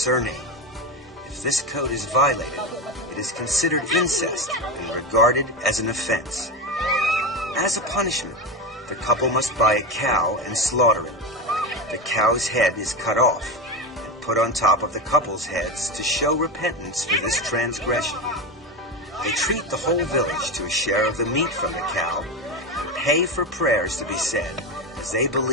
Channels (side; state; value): both; normal; correlation 0.17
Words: If this code is violated, it is considered incest and regarded as an offense. As a punishment, the couple must buy a cow and slaughter it. The cow's head is cut off and put on top of the couple's heads to show repentance for this transgression. They treat the whole village to a share of the meat from the cow and pay for prayers to be said, as they